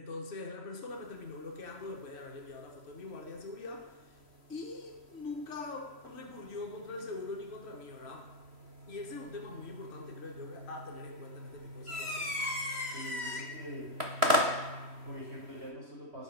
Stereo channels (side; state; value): left; late; 3.0 ms